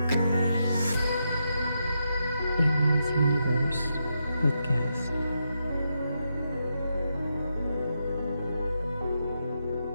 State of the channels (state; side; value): inverted; both; correlation -0.84